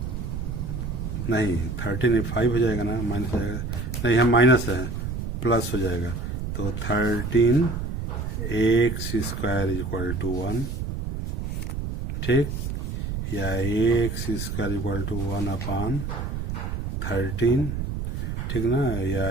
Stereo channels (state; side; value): noise; right; rumble, 4 dB below the sound